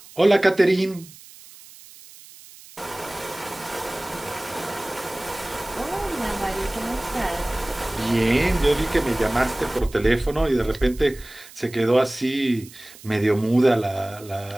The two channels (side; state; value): right; noise; hiss, 20 dB below the sound